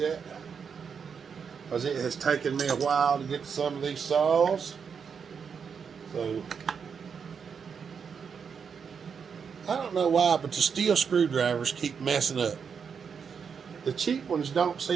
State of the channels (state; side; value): quieter; left; 6.5 dB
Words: because it has taken me a while to get to some of these saws. So I don't know why, but the steel screwdrivers keep messing up. The cheap ones don't